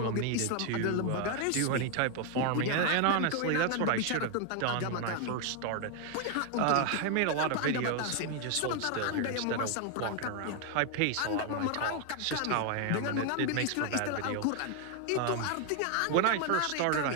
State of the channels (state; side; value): different; both; correlation 0.01